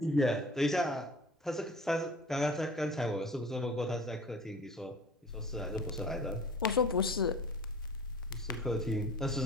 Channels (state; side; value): normal; both; correlation 0.43